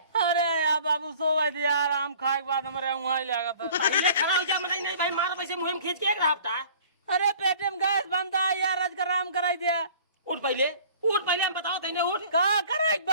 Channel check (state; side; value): inverted; both; correlation -0.50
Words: अरे यार बाबू सोवा दे यार आम खाए के बाद हमारे वहाँ ही लगा था। पहले खड़ा हो जा मनाई नहीं भाई मार वैसे मुहिम खींच के एक रहा। अरे पेटे में गैस बनता है यार आज का आराम कराई दिया। उठ पहले उठ पहले हम बताओ तेने उठ कहाँ करे